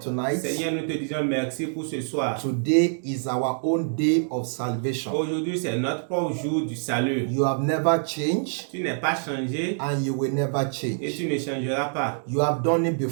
Seigneur, nous te disons merci pour ce soir. Today is our own day of salvation. Aujourd'hui, c'est notre propre jour du salut. You have never changed. Tu n'es pas changé. And you will never Et change. tu ne changeras pas. You have done it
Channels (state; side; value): silent; left; digital silence